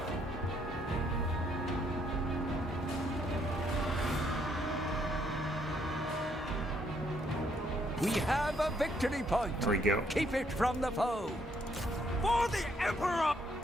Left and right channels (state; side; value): normal; both; correlation 0.71